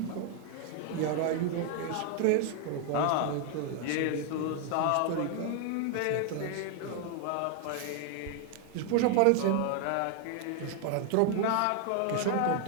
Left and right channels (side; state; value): both; different; correlation 0.00